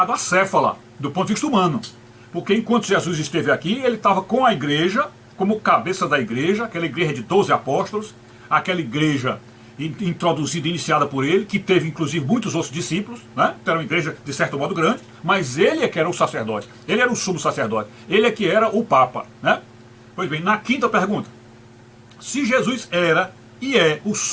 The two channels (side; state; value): both; identical; correlation 1.00